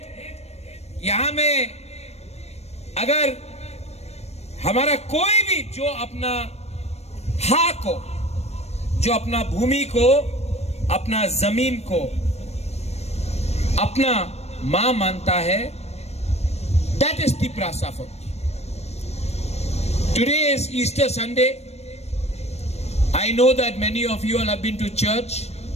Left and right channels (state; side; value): late; right; 0.31 ms